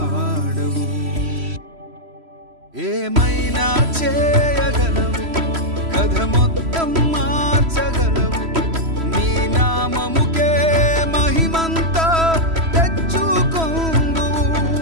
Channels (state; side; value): late; left; 3.0 ms